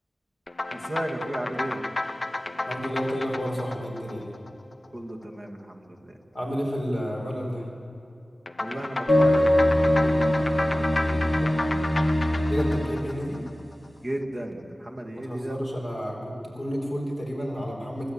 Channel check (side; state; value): both; normal; correlation 0.97